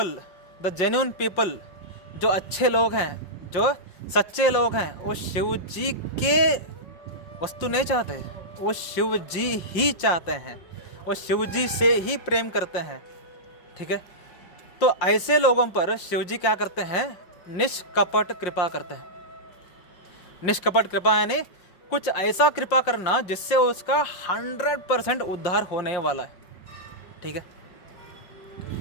the genuine people, जो अच्छे लोग हैं, जो सच्चे लोग हैं, वो शिव जी के वस्तु नहीं चाहते, वो शिव जी ही चाहते हैं, वो शिव जी से ही प्रेम करते हैं। ठीक है, तो ऐसे लोगों पर शिव जी क्या करते हैं? निष्कपट कृपा करते हैं। निष्कपट कृपा यानी कुछ ऐसा कृपा करना जिससे उसका 100% उद्धार होने वाला है। ठीक है,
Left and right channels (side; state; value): right; late; 5.6 ms